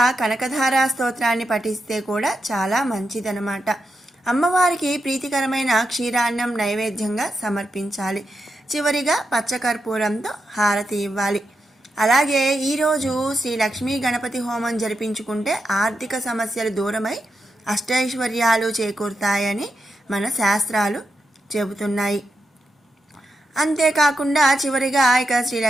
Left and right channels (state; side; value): normal; both; correlation 0.86